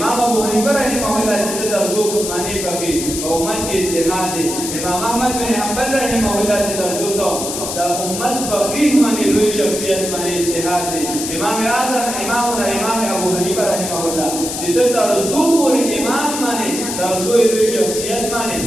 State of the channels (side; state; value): left; noise; hiss, 5 dB below the sound